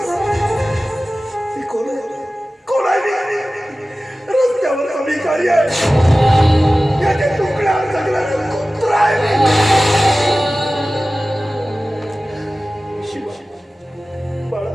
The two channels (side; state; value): both; normal; correlation 0.96